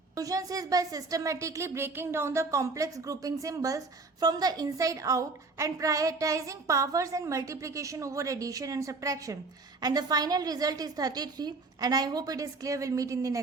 Solution is by systematically breaking down the complex grouping symbols from the inside out and prioritizing powers and multiplication over addition and subtraction. And the final result is 33. And I hope it is clear. We'll meet in the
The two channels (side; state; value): left; quieter; 3.8 dB